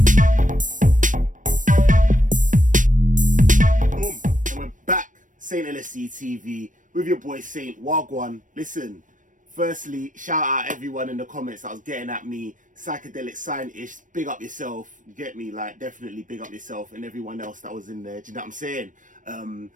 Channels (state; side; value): late; left; 0.38 ms